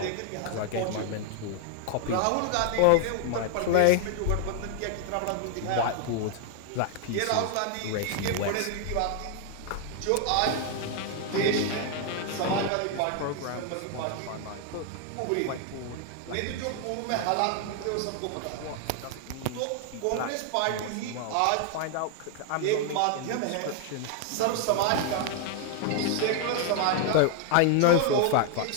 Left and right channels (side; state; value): both; different; correlation 0.00